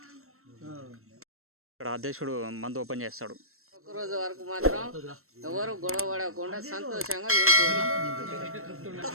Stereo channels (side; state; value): left; late; 0.62 ms